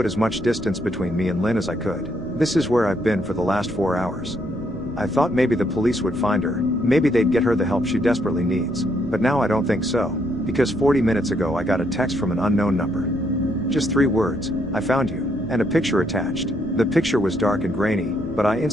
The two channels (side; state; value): left; noise; rumble, 16 dB below the sound